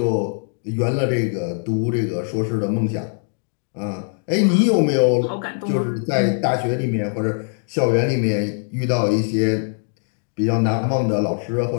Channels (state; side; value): silent; right; digital silence